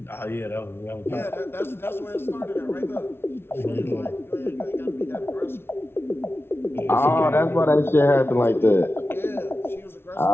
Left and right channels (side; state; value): right; late; 0.12 ms